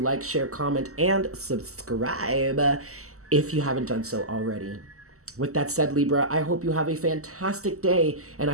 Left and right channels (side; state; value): left; late; 0.64 ms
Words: share, comment, and subscribe if you haven't done so already. With that said, Libra, I hope you have a fantastic day, and